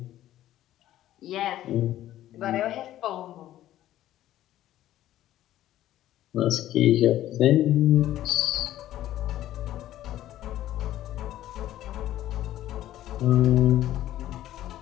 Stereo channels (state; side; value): quieter; right; 13.4 dB